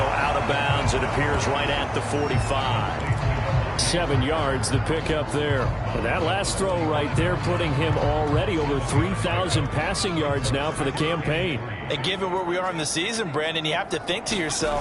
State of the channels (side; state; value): both; identical; correlation 1.00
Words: out of bounds. It appears right at the 45. 7 yards, the pickup there. And that last throw right there putting him already over 3,000 passing yards now for the campaign. And given where we are in the season, Brandon, you have to think to